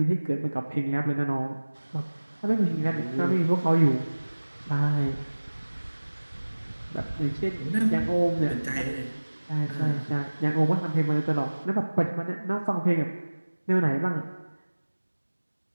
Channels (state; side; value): inverted; both; correlation -1.00